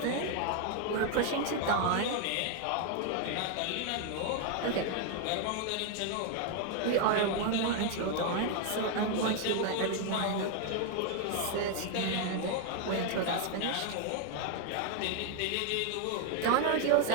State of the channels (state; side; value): different; both; correlation 0.00